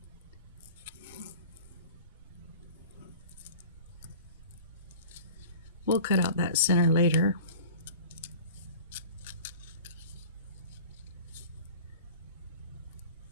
We'll cut out that center later.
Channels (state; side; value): inverted; both; correlation -0.41